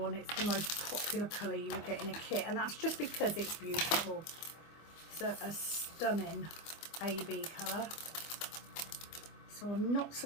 It's the most popular colour you will get in a kit, and that's just because it's beautiful. It's a stunning AB colour, so I'm not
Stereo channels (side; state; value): right; late; 25 ms